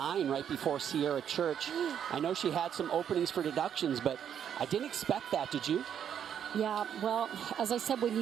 right before Sierra Church. I know she had some openings for deductions, but I didn't expect that, did you? Yeah, well, as I said, when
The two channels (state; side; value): quieter; left; 8.9 dB